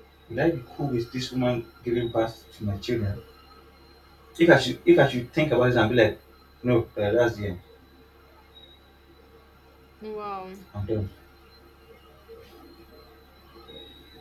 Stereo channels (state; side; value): identical; both; correlation 1.00